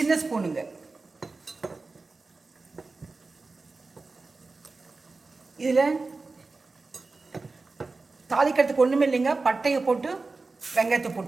ஸ்பூனுங்க. இதில் தாளிக்கிறதுக்கு ஒன்றுமே இல்லைங்க. பட்டையை போட்டு வெங்காயத்தை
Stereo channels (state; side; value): quieter; left; 3.8 dB